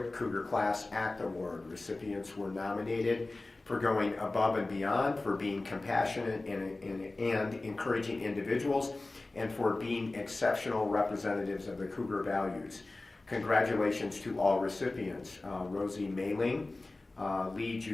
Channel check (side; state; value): right; quieter; 3.1 dB